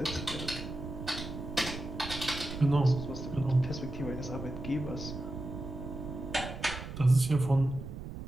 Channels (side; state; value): right; noise; rumble, 9 dB below the sound